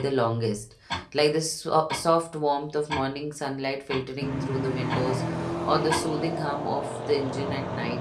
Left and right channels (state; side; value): identical; both; correlation 1.00